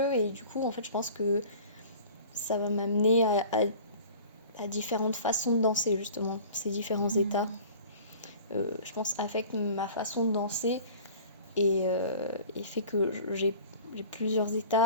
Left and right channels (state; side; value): inverted; both; correlation -0.44